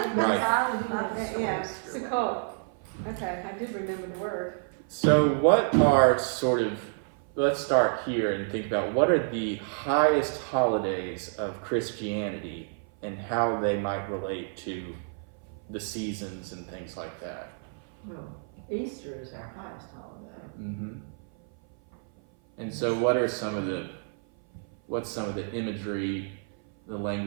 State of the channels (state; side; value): silent; left; 56 dB below the other